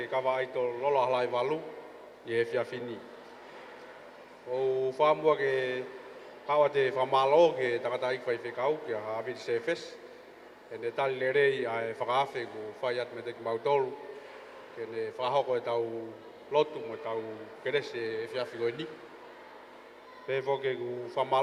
e kawa aito lolo halai walu i e fiafini. O whamua ke kawa te whamalo ke takata ikwai whekau ke hawiti sefes. E ne tali le rei a e whakaafe ko whai at me teki mautolu. Ke ne whahoko e tau lotu mo tau kerese e fiafi koe ni. Pe whoke ku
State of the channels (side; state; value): both; identical; correlation 1.00